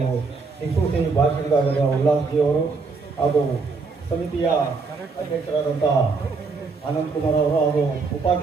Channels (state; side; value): quieter; left; 4.4 dB